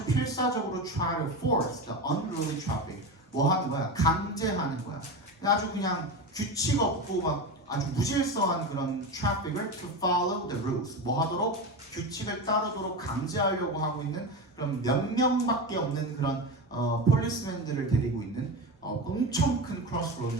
필사적으로 try to force the unruly traffic 뭐 하는 거야? 강제하는 거야. 아주 그냥 규칙 없고 막 아주 무질서한 그런 트래픽을 to follow the rules 뭐 하도록 규칙을 따르도록 강제하려고 하고 있는 그런 몇 명밖에 없는 그런 폴리스맨들을 데리고 있는 엄청 큰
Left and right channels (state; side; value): normal; both; correlation 0.22